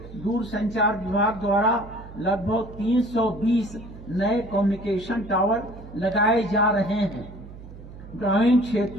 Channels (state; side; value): noise; right; hum, 16 dB below the sound